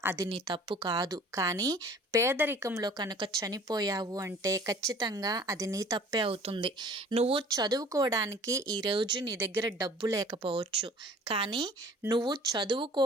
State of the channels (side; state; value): both; normal; correlation 0.49